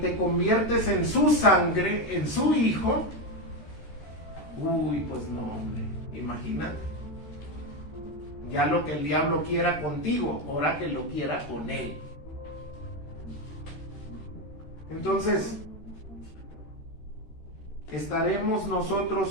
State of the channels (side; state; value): right; late; 13 ms